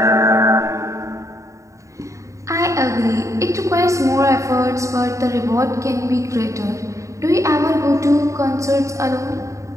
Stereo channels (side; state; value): left; late; 0.15 ms